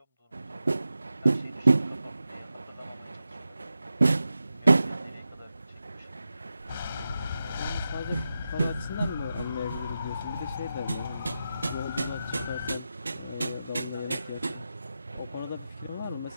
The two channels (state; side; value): inverted; both; correlation -0.91